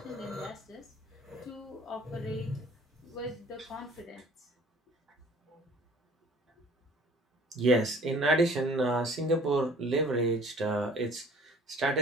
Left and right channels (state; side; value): normal; both; correlation 0.52